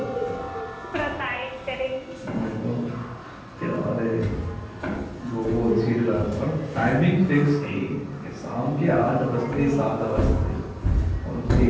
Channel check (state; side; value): identical; both; correlation 1.00